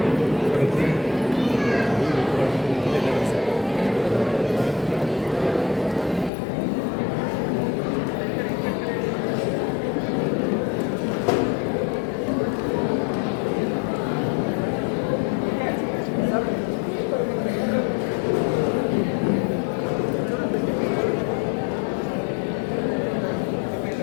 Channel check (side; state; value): right; drops out; at 6.3 s